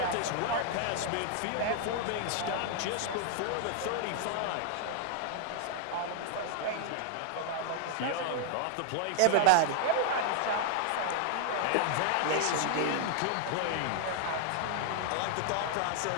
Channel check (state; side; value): different; both; correlation 0.00